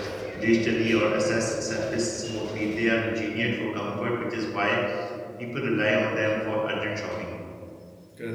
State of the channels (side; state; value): both; identical; correlation 1.00